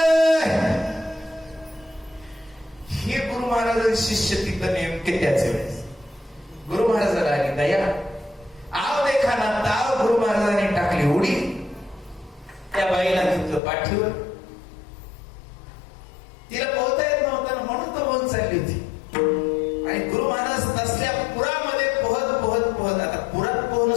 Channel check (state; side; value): drops out; right; at 13.6 s